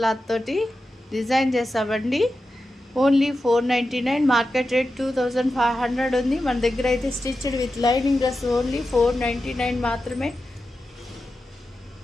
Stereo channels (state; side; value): normal; both; correlation 0.91